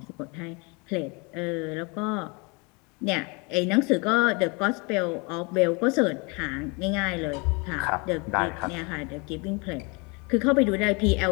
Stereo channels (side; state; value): right; quieter; 30.0 dB